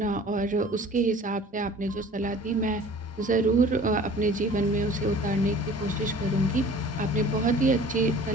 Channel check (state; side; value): normal; both; correlation 0.47